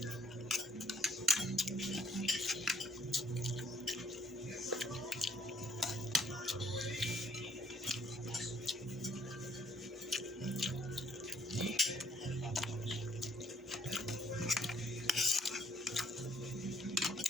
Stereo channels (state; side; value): normal; both; correlation 0.65